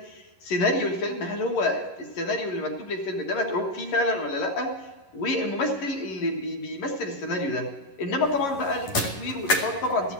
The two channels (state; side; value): late; right; 11 ms